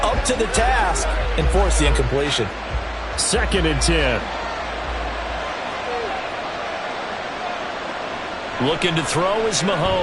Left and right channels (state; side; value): identical; both; correlation 1.00